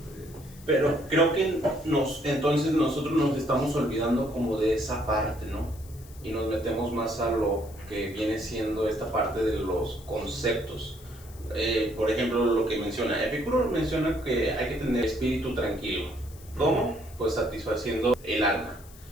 Pero creo que entonces nosotros nos estamos olvidando como de esa parte, ¿no? Y nos metemos más a lo que viene siendo esta parte de los conceptos. Por ejemplo, lo que menciona Epicuro menciona que hay que tener espíritu tranquilo. ¿Cómo? Pues satisfaciendo el alma,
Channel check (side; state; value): left; noise; hiss, 22 dB below the sound